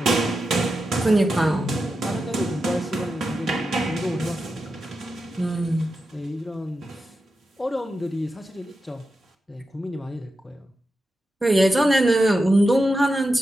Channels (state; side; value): normal; both; correlation 0.89